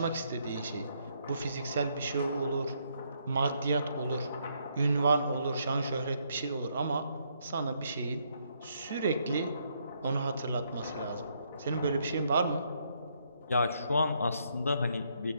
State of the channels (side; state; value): both; inverted; correlation -0.73